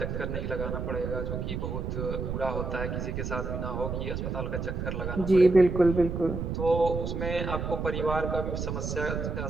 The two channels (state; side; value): noise; right; rumble, 3 dB below the sound